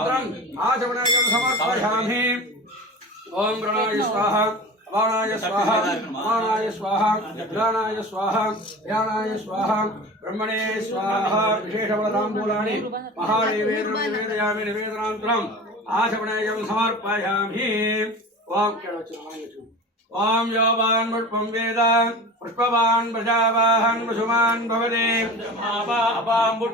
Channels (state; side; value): normal; both; correlation 0.34